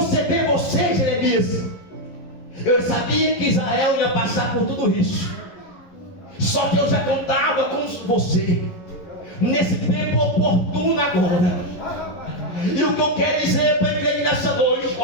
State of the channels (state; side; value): late; right; 11 ms